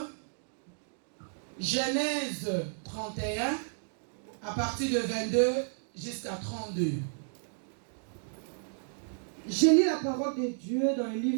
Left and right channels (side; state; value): left; silent; digital silence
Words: Genèse 31, à partir de 22 jusqu'à 32. Je lis la parole de Dieu dans le